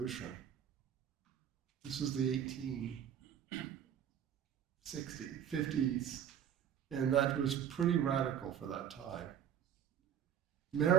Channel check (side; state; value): left; quieter; 9.2 dB